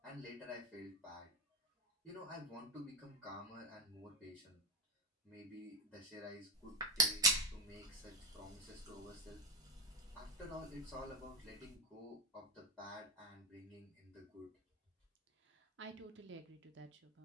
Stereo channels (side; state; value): both; normal; correlation 0.13